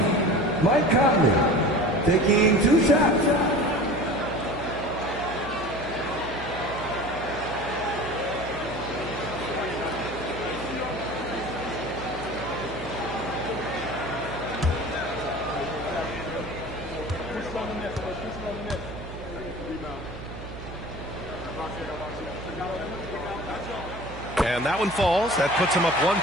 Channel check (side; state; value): right; noise; hum, 12 dB below the sound